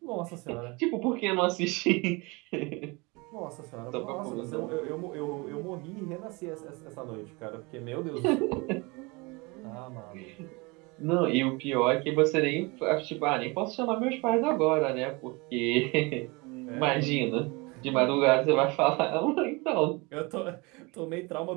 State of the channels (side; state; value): left; quieter; 26.5 dB